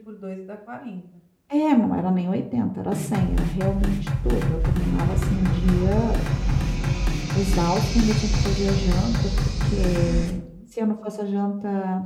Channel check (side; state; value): both; identical; correlation 1.00